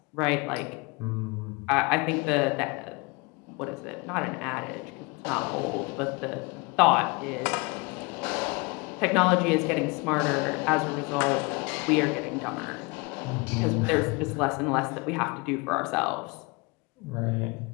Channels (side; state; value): right; quieter; 27.8 dB